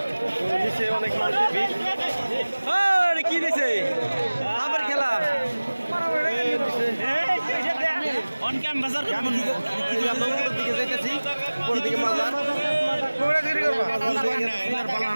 নিচে অনেক মানুষের ভিড়। কি দিছে আবার খেলা দিকে যাইতেছি, উপরের দিকে মাজার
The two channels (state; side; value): inverted; both; correlation -1.00